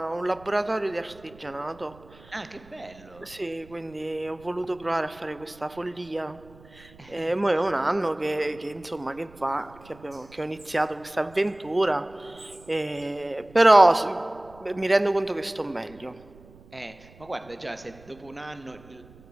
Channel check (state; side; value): noise; right; rumble, 23 dB below the sound